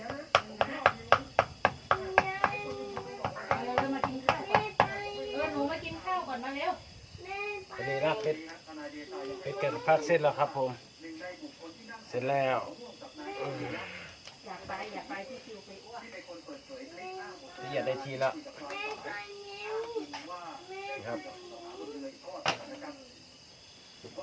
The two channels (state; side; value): identical; both; correlation 1.00